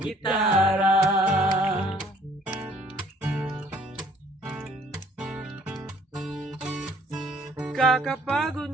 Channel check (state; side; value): normal; both; correlation 0.59